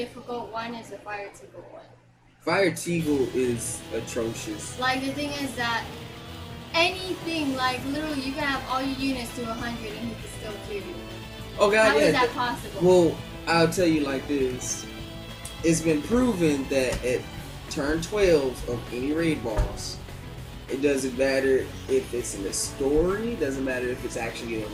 one is the Fire Teagle one. Fire Teagle is atrocious. Like the thing is that anything, like literally you can have all your units to 100 and he can still kill you. Oh God, How yeah. is that possible? Well, I'll tell you like this. It's been proven that at turn 12 of any raid boss, it doesn't matter if it's in the story, doesn't matter if it's actually a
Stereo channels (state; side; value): identical; both; correlation 1.00